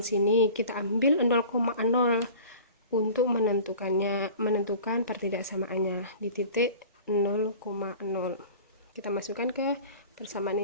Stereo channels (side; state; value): both; inverted; correlation -0.42